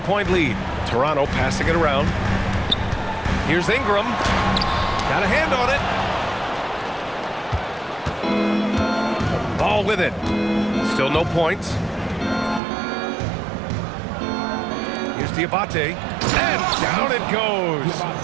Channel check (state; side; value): drops out; left; at 12.6 s